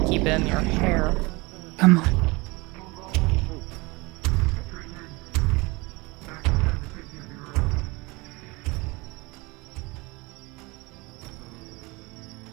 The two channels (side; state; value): left; quieter; 24.7 dB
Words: keep in your hair. Come on.